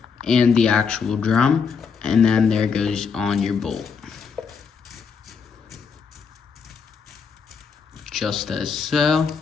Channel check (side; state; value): right; quieter; 5.8 dB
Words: and the actual drum, and then there goes on your bolt. Just as so.